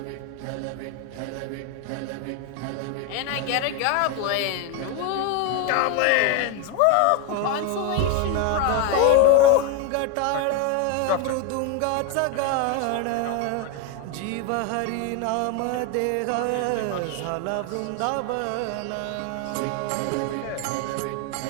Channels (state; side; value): different; both; correlation 0.01